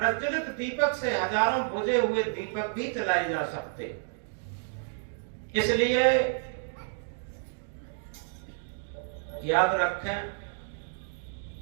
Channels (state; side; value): silent; left; digital silence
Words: दीपक से हजारों बुझे हुए दीपक भी जलाए जा सकते। इसलिए याद रखें